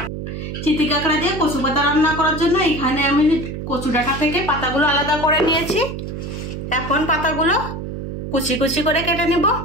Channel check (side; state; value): right; noise; hum, 7 dB below the sound